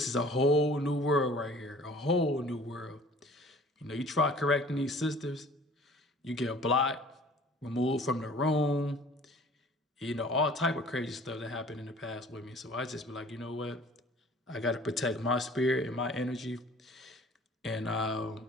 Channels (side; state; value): both; normal; correlation 0.50